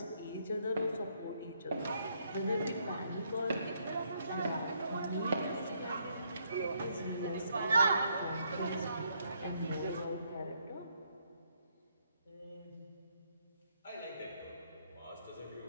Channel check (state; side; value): inverted; both; correlation -0.73